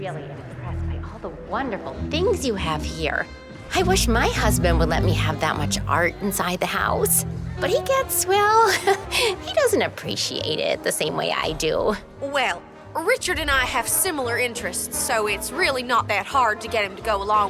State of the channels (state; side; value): identical; both; correlation 1.00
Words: impressed by all the wonderful things you have here. I wish my husband would let me have that much art inside the house. But he gets, well, he doesn't appreciate it the same way I do. Well, Richard and I have similar interests, so it's really not that hard to get him to go